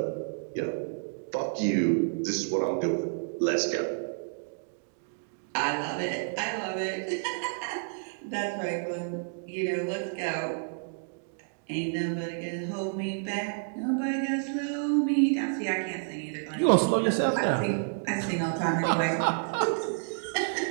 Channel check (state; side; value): silent; left; digital silence